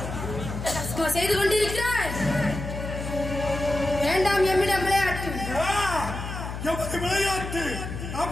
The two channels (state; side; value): noise; left; hum, 7 dB below the sound